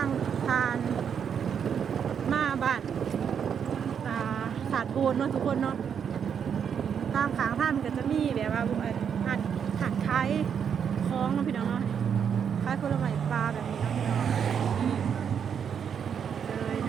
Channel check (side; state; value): left; quieter; 7.6 dB